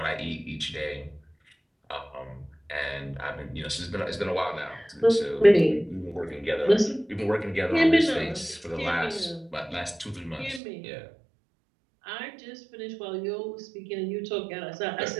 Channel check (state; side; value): drops out; left; at 10.6 s